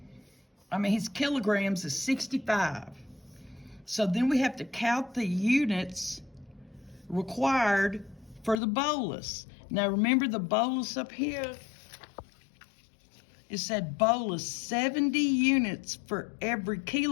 is 65. So then we have to count the units required for the bolus. Now remember the bolus up here? It said bolus 70 units for every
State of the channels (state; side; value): drops out; right; at 8.6 s